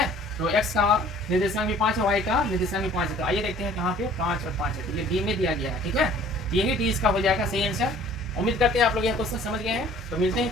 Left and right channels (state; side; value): normal; both; correlation 0.52